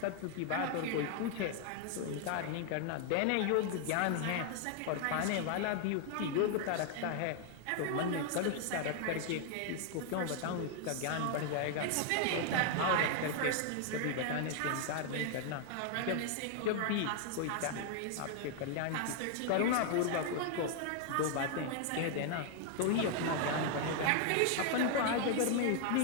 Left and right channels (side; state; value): both; different; correlation 0.00